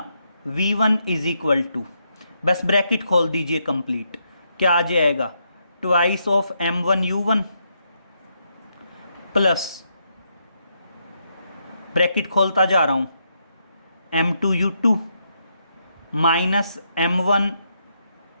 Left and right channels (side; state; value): both; inverted; correlation -0.79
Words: v1 इज इक्वल टू, बस ब्रैकेट खोल दीजिए कंप्लीट, क्या आ जाएगा, twice of m1 u1 plus, bracket खोलता जा रहा हूं, m2 u2 minus m1